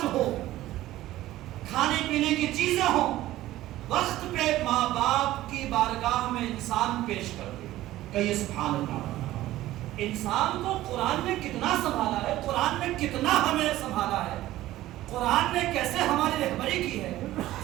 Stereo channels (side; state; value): left; quieter; 15.4 dB